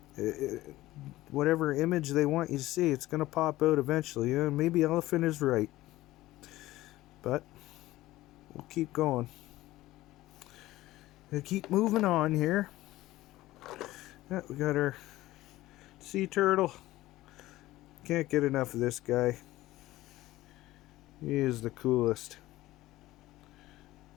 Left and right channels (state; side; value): quieter; right; 16.8 dB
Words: Whatever image they want you to see, it's going to pop out eventually. Maybe elephant is right. But we'll keep going. We'll keep moving on here. Yeah, we got our sea turtle. Can't get enough of this guy. He is the coolest.